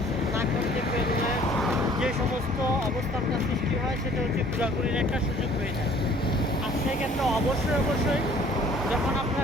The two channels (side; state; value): both; normal; correlation 0.54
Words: না করতে পেরলে যে সমস্ত অবস্থানটা সৃষ্টি হয় সেটা হচ্ছে ঘোরাঘুরির একটা সুযোগ হয়ে যায়। আর সেক্ষেত্রে অবশ্যই যখন